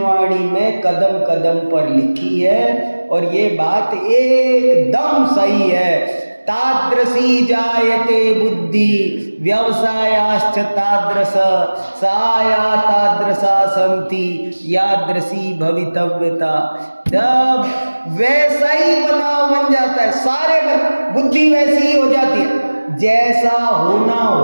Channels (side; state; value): both; inverted; correlation -1.00